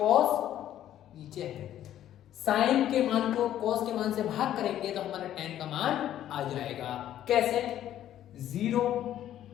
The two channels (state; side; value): quieter; right; 11.8 dB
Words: नीचे है, साइन के मान को कॉस के मान से भाग करेंगे तो हमारा tan का मान आ जाएगा। कैसे, 0